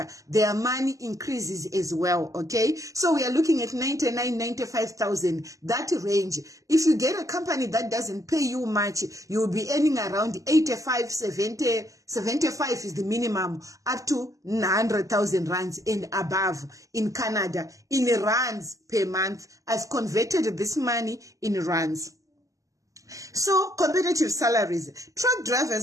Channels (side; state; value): left; late; 0.16 ms